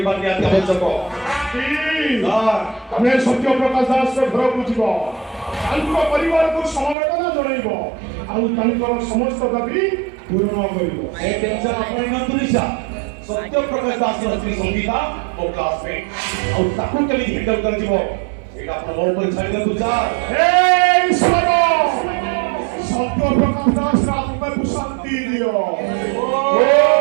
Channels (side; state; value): left; drops out; at 7.0 s